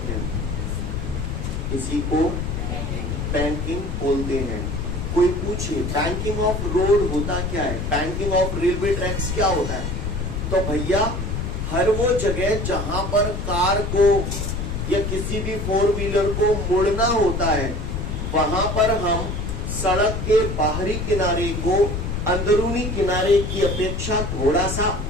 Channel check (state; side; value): noise; left; rumble, 3 dB below the sound